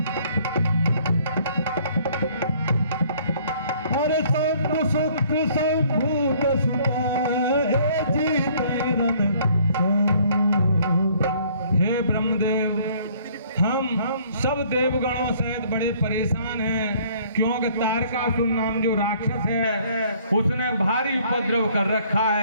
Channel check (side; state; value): both; inverted; correlation -0.59